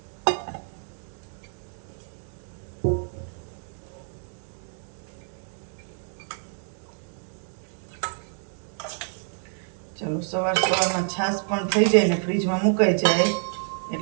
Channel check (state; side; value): silent; left; 60 dB below the other